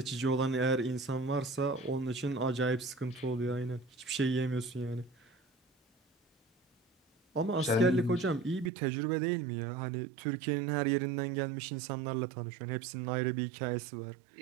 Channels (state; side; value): drops out; left; at 8.7 s